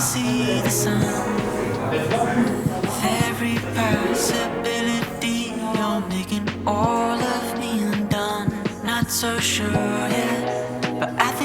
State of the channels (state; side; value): identical; both; correlation 1.00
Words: see the sun. Every possibility, you're making all of me undone. Not so sure yet, but I